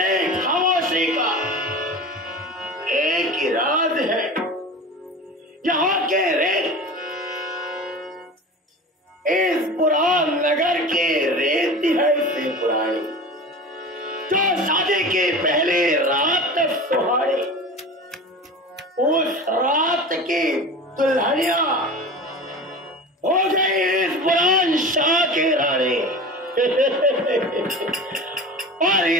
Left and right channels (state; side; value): normal; both; correlation 0.34